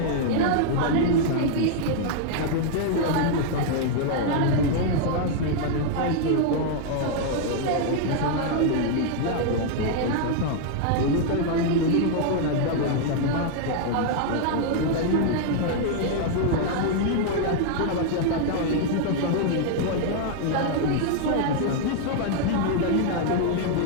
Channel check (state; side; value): different; both; correlation 0.00